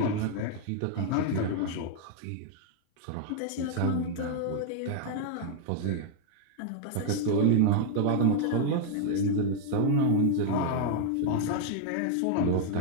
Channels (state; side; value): different; both; correlation 0.00